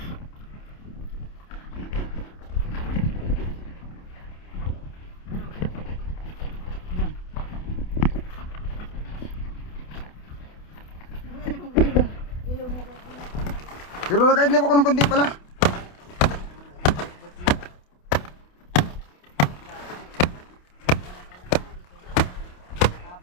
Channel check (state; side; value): late; right; 28 ms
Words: Pero nakaidlip ako ng konti pala.